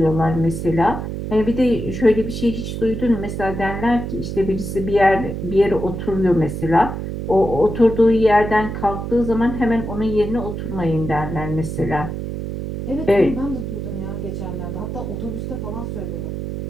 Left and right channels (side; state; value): right; noise; hum, 5 dB below the sound